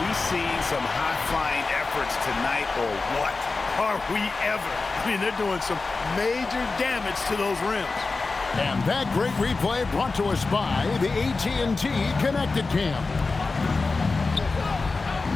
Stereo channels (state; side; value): quieter; right; 3.9 dB